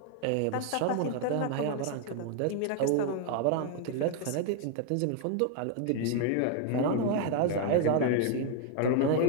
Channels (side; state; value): both; different; correlation 0.01